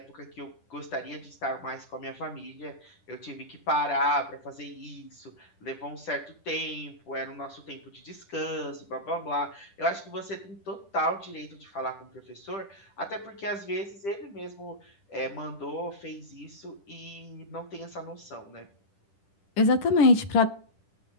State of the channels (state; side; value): late; right; 10 ms